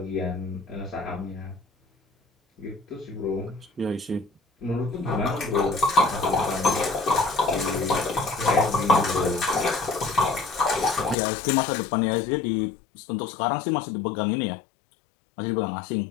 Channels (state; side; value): drops out; right; at 11.2 s